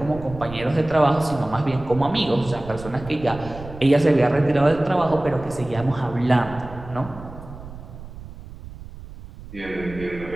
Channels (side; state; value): right; noise; rumble, 15 dB below the sound